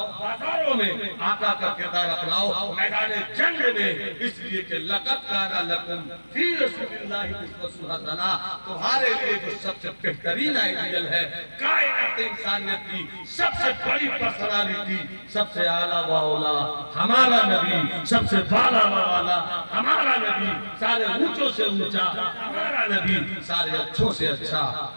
बाजारों में, आका का किरदार अपनाओ मैदान जंग में। इसलिए कि लक़द काना लकुम फी रसूलिल्लाहि उस्वतुन हसना, तुम्हारे लिए जो सबसे बेहतरीन आइडियल है कायनात इंसानियत की सबसे बड़ी पर्सनालिटी, सबसे आला व औला हमारा नबी, सबसे बाला व वाला हमारा नबी, सारे ऊंचों से ऊंचा हमारा नबी, सारे अच्छों से अच्छा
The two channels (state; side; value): inverted; both; correlation -1.00